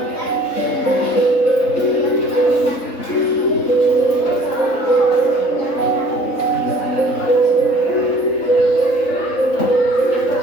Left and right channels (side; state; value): right; late; 3.7 ms